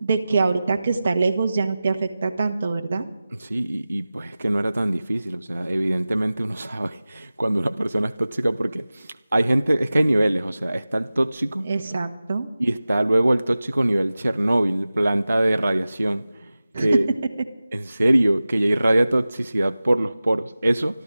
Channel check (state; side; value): inverted; both; correlation -0.96